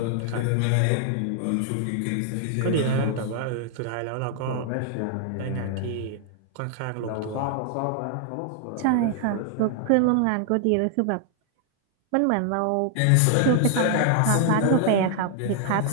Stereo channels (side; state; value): both; different; correlation 0.00